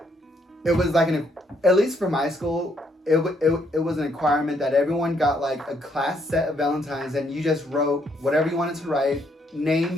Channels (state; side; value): normal; both; correlation 0.71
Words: it was like at least for my school, it was a requirement that everyone got like a class set of Valentines and you just wrote whatever you wanted to write,